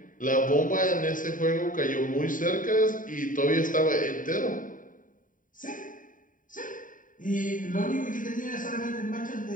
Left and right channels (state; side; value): late; right; 0.39 ms